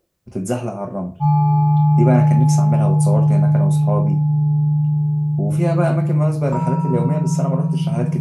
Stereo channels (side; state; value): both; identical; correlation 1.00